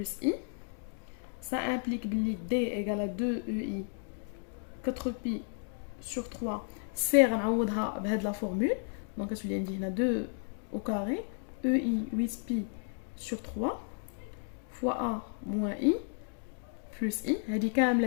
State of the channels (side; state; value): right; silent; 56 dB below the other